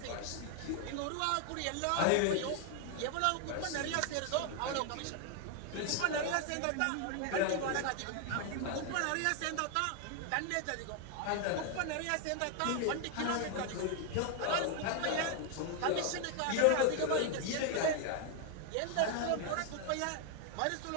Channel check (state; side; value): different; both; correlation 0.00